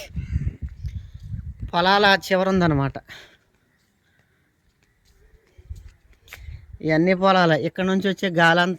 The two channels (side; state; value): both; identical; correlation 1.00